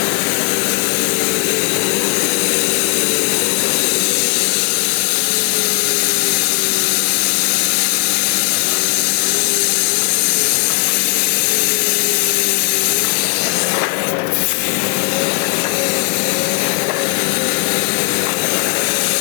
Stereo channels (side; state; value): right; quieter; 31.6 dB